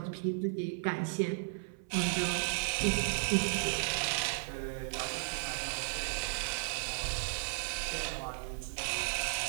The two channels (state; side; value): silent; left; 54 dB below the other